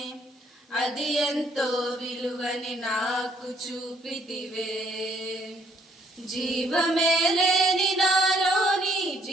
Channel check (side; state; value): both; normal; correlation 0.66